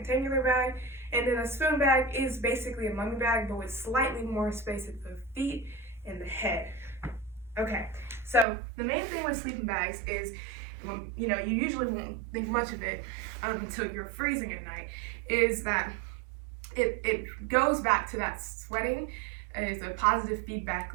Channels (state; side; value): drops out; left; at 8.5 s